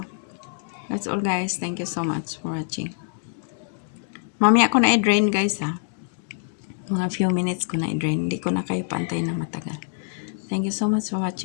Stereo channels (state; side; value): silent; right; digital silence